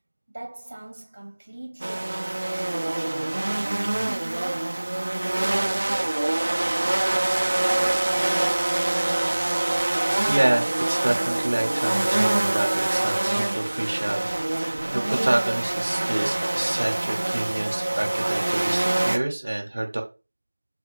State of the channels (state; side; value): inverted; both; correlation -1.00